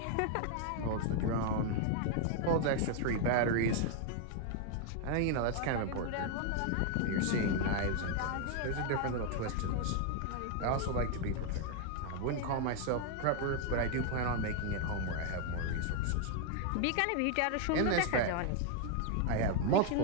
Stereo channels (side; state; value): both; different; correlation 0.00